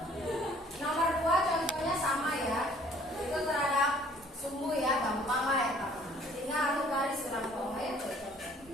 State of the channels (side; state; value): both; normal; correlation 0.57